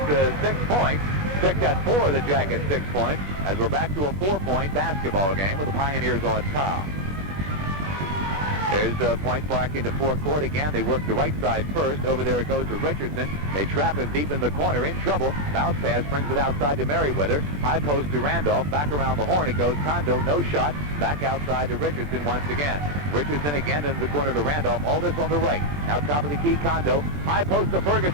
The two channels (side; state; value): left; late; 20 ms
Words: 6 points. Picked at 4 of the Jackets' 6 points as we're back to a 4-point basketball game with the Pioneers on top. There's Point Park into forecourt again. They work the right side first. Over there it goes to Richardson. They trap him deep in the corner, in trouble. Bounce pass brings it outside to Merriweather. High post to Randolph. Back around the horn it goes. Kondo, no shot. Back outside to Richardson once again. Richardson again into the corner to Randolph. All this on the right. Now top of the key, Kondo. High post to